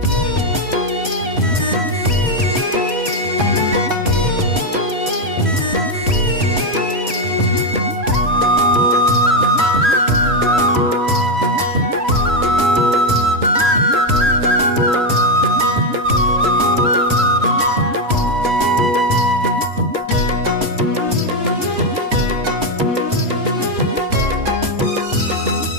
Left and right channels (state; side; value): late; left; 3.0 ms